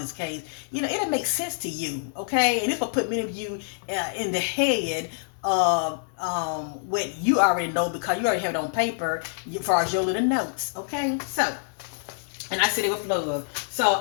case. You know, it'll make sense to you, okay? And this will put many of you in the head of what you already know because you already have it on paper as far as your little notes, okay? So, and I said it with love.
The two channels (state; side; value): silent; right; 61 dB below the other